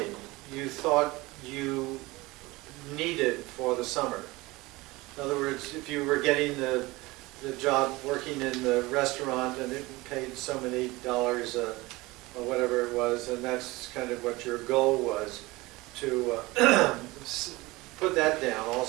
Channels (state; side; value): quieter; left; 21.4 dB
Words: you thought you needed for the summer. In other words, if you were getting the job working in the restaurant and it paid so many dollars or whatever it was, and that's kind of what your goal was, to put that down